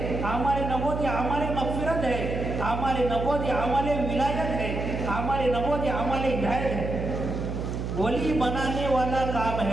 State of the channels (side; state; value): right; noise; hum, 4 dB below the sound